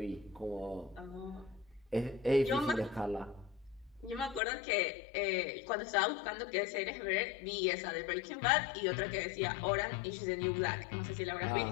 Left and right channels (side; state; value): right; drops out; at 4.4 s